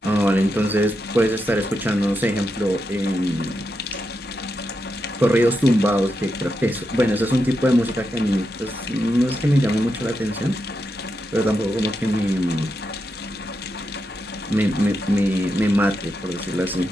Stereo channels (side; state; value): both; normal; correlation 0.85